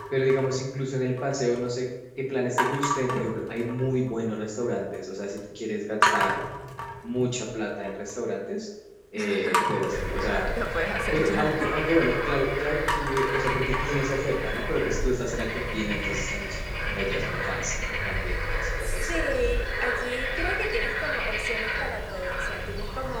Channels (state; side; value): identical; both; correlation 1.00